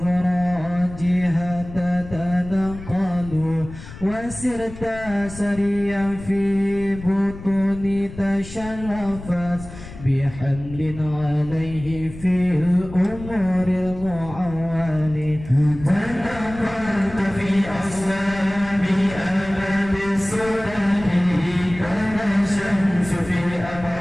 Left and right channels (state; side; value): noise; left; rumble, 14 dB below the sound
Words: تتنقل وسرت سريا في بطون تشرفت بحمل عليه في الأمور المعول تنقلت في أصلاب أبد السودان كان الشمس في